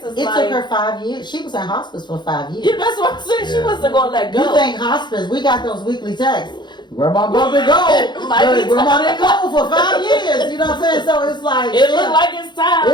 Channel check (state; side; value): late; right; 0.21 ms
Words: It took her 5 years. She was in hospice for 5 years. Yeah, that's what I'm saying. She wasn't going to let go. You think hospice, we got those weekly texts. Grandma brother go. Like Grandma didn't go for 5 years. You know what I'm saying? So it's like. It looked like it's time.